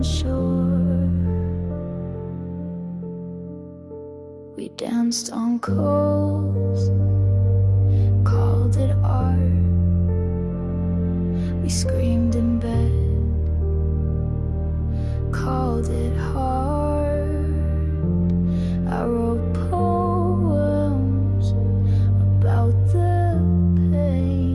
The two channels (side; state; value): both; identical; correlation 1.00